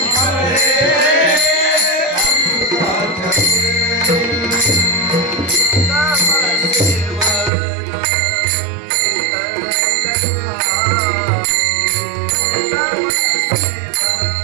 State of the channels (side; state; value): left; drops out; at 7.5 s